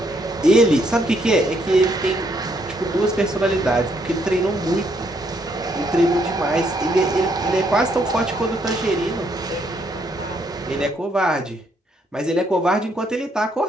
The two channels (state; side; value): normal; both; correlation 0.72